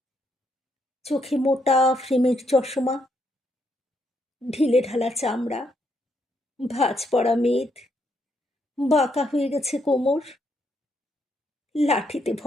চোখে মোটা ফ্রেমের চশমা, ঢিলে ঢালা চামড়া, ভাঁজ পড়া মেদ, বাঁকা হয়ে গেছে কোমর, লাঠিতে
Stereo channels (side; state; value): both; normal; correlation 0.76